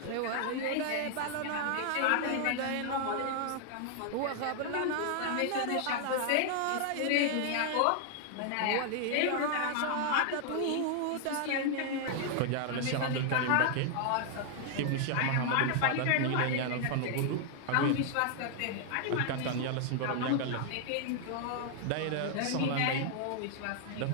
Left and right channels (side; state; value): both; different; correlation 0.00